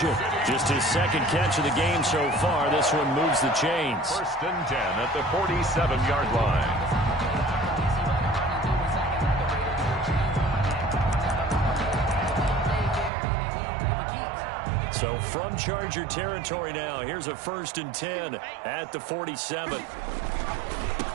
Just his 2nd catch of the game so far. This one moves the chains. 1st and 10 at the 47-yard line. So from Charger territory now, here's a 1st and 10 at the 47.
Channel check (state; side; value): drops out; left; at 13.1 s